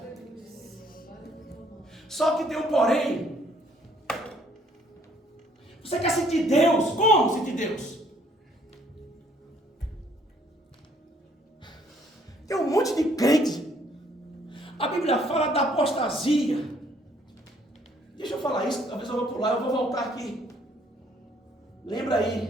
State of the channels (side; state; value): both; normal; correlation 0.64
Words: Só que tem um porém. Você quer sentir Deus? Como sentir Deus? Tem um monte de crente. A Bíblia fala da apostasia. Deixa eu falar isso, talvez eu vou pular, eu vou voltar aqui. Lembra